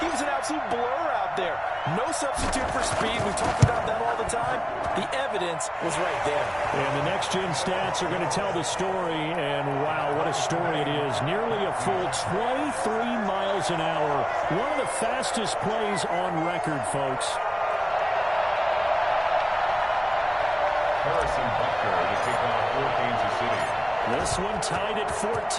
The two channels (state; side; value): identical; both; correlation 1.00